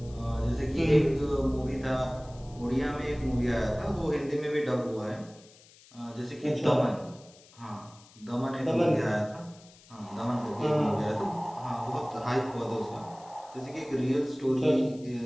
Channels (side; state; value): left; noise; hiss, 25 dB below the sound